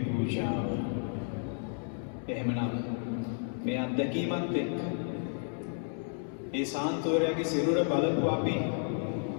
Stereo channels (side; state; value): right; silent; 56 dB below the other